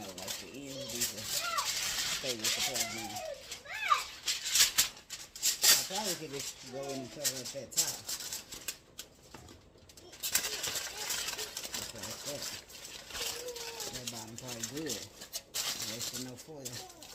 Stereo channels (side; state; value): both; identical; correlation 1.00